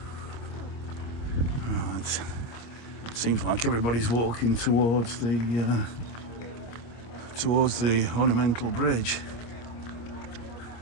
Right. Seems like everybody's walking towards the ornamental bridge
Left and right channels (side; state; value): right; late; 25 ms